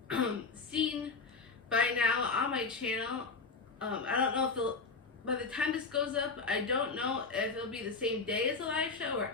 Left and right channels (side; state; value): right; quieter; 4.3 dB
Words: seen by now on my channel, I don't know if by the time this goes up, I don't know if it'll be the same day as the live show or